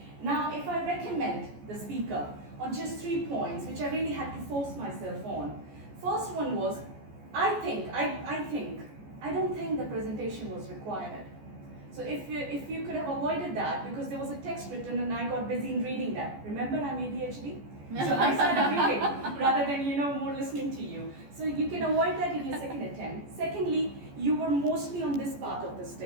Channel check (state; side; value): late; left; 14 ms